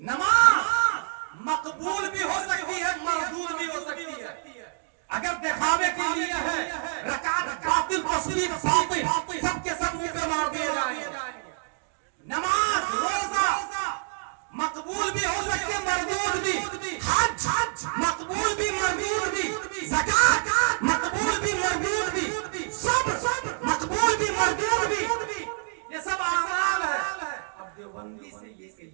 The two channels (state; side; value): silent; left; digital silence